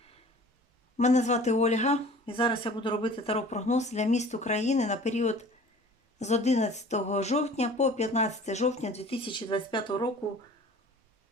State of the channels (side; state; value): both; normal; correlation 0.46